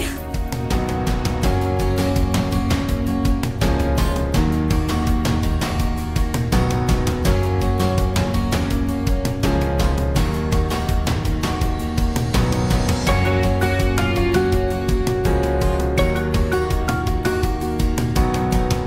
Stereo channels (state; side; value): identical; both; correlation 1.00